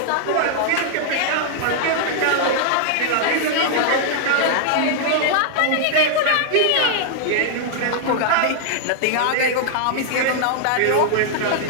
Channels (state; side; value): different; both; correlation -0.01